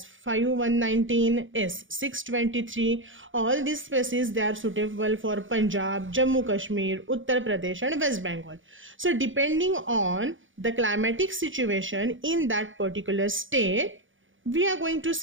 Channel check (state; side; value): late; left; 0.57 ms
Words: S623. All these species, they are suitable for Punjab, Jammu Kashmir, Uttar Pradesh and West Bengal. So depending on the climatic situation in that particular state, we are going to